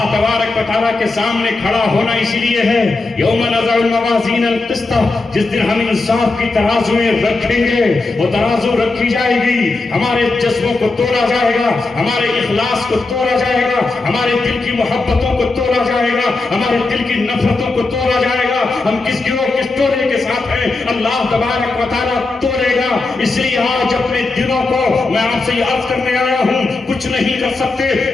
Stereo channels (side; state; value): right; quieter; 3.5 dB